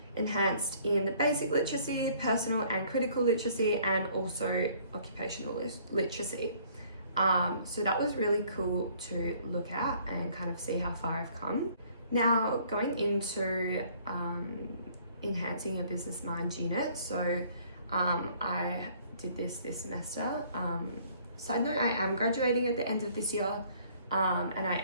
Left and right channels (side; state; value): both; inverted; correlation -0.59